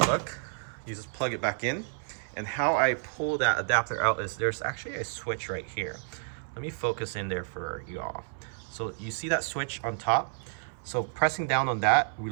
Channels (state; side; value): silent; left; 58 dB below the other